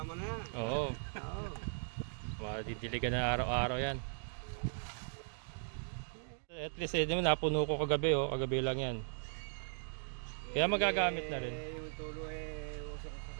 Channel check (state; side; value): silent; left; digital silence